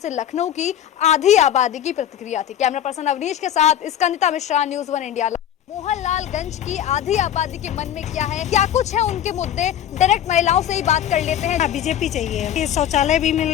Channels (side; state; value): right; quieter; 10.5 dB